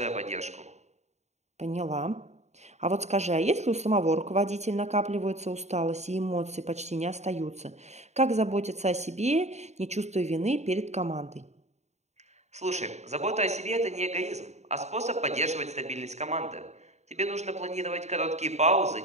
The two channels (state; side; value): late; left; 0.32 ms